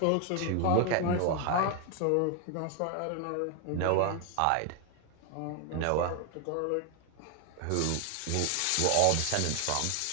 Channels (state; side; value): different; both; correlation 0.00